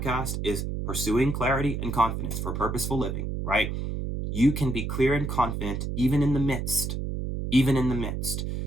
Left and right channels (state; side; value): noise; right; hum, 3 dB below the sound